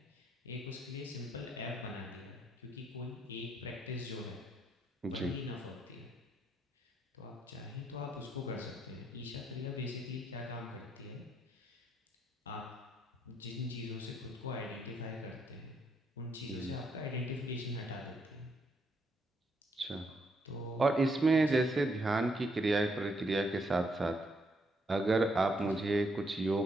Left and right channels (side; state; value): both; normal; correlation 0.75